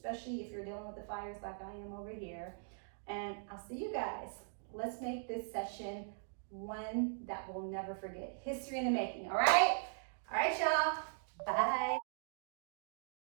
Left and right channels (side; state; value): left; silent; digital silence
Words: if you're dealing with the fires like I am over here. And I'll see you guys. Let's make this session one that we'll never forget. History in the making, all right? All right, y'all. Bye.